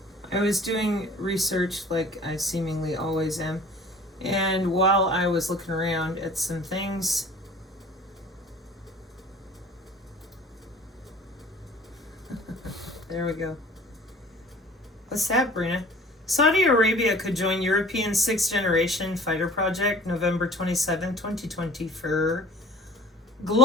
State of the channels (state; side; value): normal; both; correlation 0.47